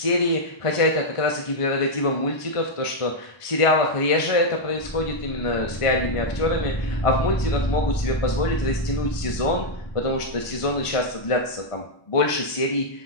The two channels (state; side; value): late; right; 1.5 ms